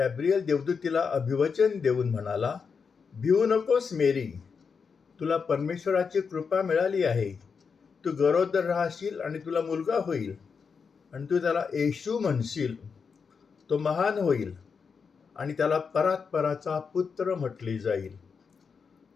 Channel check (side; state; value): right; quieter; 5.7 dB